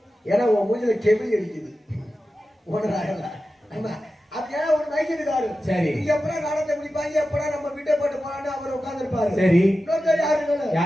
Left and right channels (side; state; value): both; normal; correlation 0.93